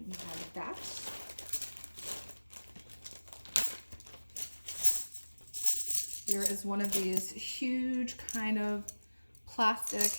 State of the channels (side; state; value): both; inverted; correlation -1.00